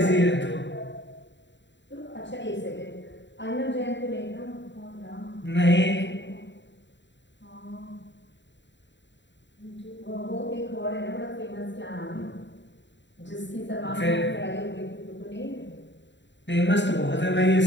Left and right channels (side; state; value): right; late; 0.52 ms